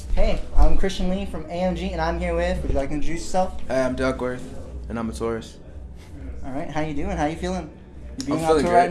Hey, I'm Christian Lee from AMG, and I'm here with, would you like to introduce yourself? Hey, I'm Duckworth, and I'm a tourist. All right, how you doing? How you feeling? You being I'm on feeling tour great.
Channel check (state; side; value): identical; both; correlation 1.00